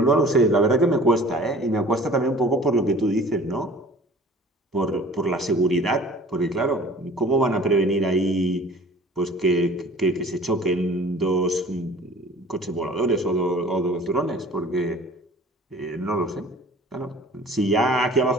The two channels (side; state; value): both; normal; correlation 0.47